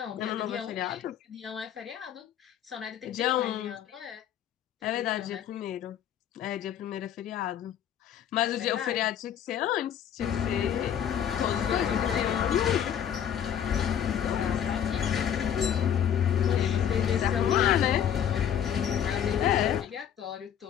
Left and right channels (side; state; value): right; quieter; 9.3 dB